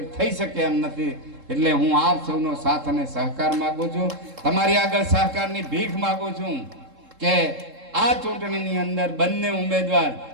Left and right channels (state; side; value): late; left; 3.7 ms